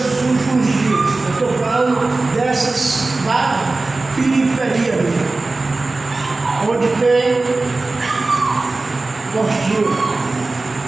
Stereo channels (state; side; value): quieter; left; 3.4 dB